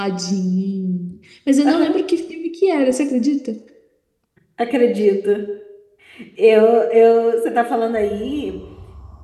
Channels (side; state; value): both; identical; correlation 1.00